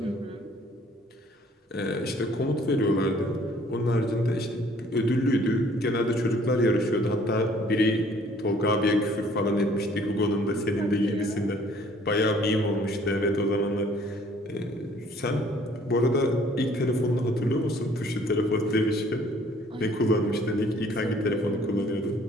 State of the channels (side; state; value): both; normal; correlation 0.58